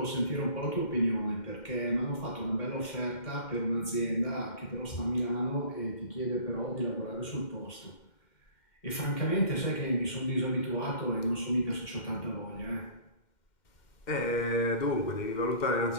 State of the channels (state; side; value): late; right; 2.1 ms